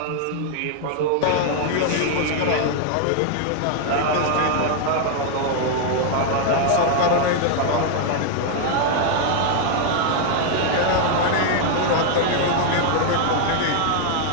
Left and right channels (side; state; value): both; different; correlation 0.00